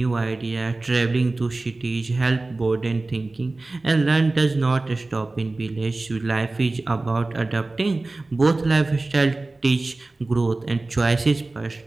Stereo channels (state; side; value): quieter; left; 3.1 dB